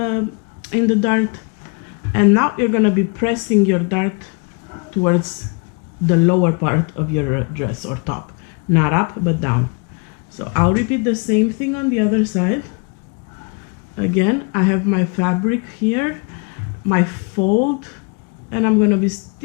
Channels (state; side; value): quieter; right; 34.1 dB